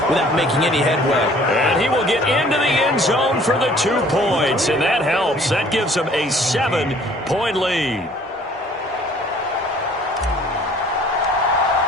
without making any headway. And he will get into the end zone for the 2 points, and that helps. That gives them a 7-point lead.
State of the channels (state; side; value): normal; both; correlation 0.55